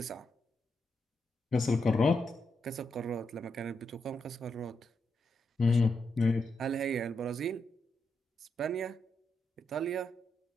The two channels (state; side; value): normal; both; correlation 0.83